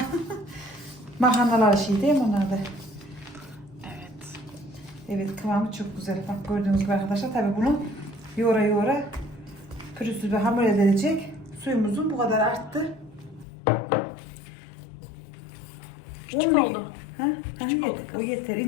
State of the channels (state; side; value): drops out; right; at 13.5 s